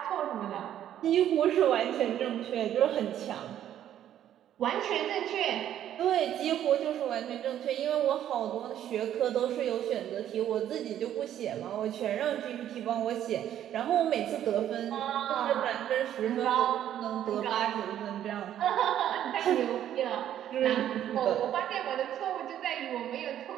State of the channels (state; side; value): quieter; left; 11.0 dB